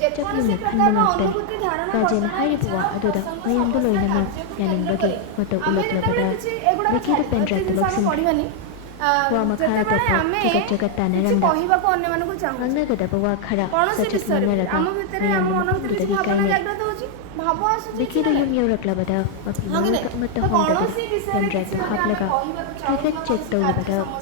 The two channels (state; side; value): different; both; correlation 0.00